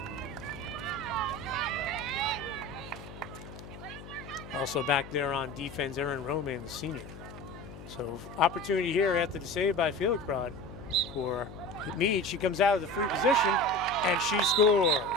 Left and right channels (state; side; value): noise; left; hum, 14 dB below the sound